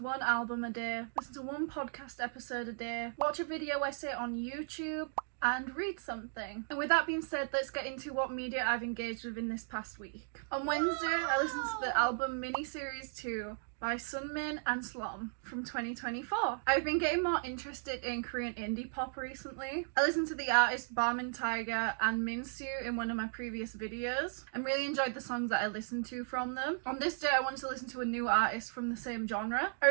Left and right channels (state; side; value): silent; left; digital silence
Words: album a day, listen to 1 podcast episode a day, watch a video essay on YouTube, and read something. And with that being said, let's get into what media I've engaged with in this past week. On Wednesday, I listened to the album Miniseries 2 by Sunmin and Slom from 2024. I've been getting more interested in Korean indie pop recently. I listened to the artists Barman Tiger and Minsu in one of my previous videos and really enjoyed the songs that I listened to from them. On this day I wanted to listen to a new artist from the same genre. I